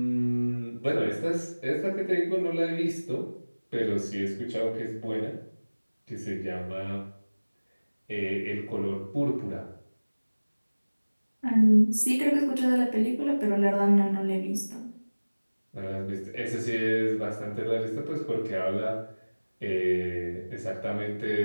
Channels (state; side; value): inverted; both; correlation -1.00